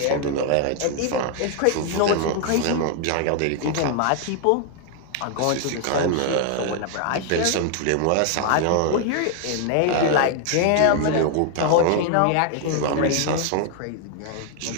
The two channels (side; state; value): both; different; correlation 0.00